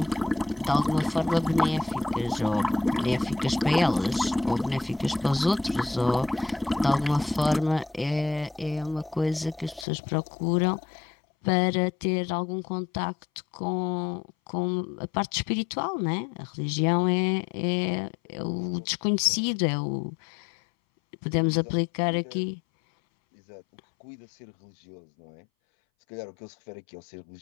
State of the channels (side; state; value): right; drops out; at 9.9 s